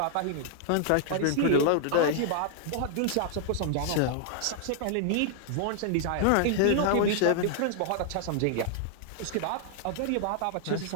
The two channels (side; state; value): both; different; correlation -0.01